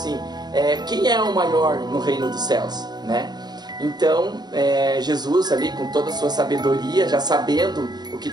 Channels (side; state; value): left; late; 0.20 ms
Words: quem é o maior no reino dos céus, né? Então, Jesus ali com toda a sua sabedoria, já sabendo o que